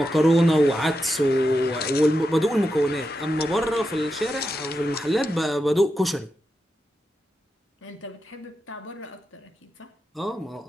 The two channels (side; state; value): both; normal; correlation 0.88